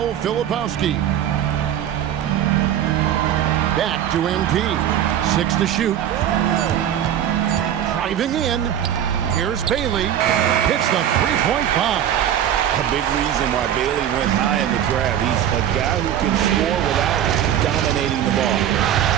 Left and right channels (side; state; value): left; quieter; 10.4 dB